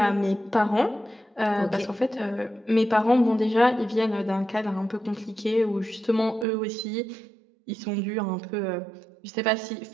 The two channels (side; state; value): left; drops out; at 6.5 s